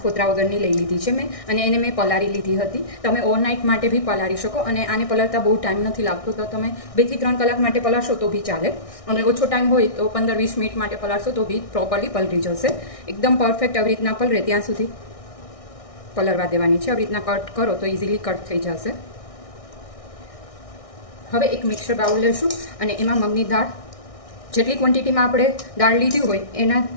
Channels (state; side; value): late; right; 1.6 ms